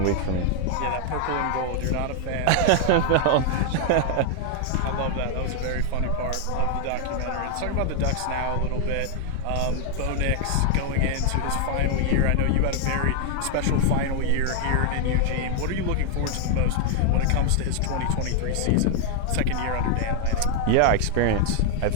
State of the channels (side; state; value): both; different; correlation 0.00